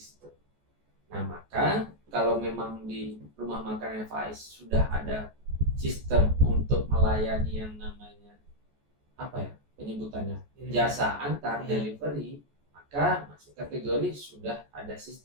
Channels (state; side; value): late; left; 14 ms